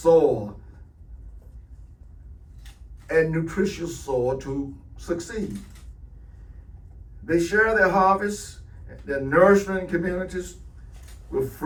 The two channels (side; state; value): both; identical; correlation 1.00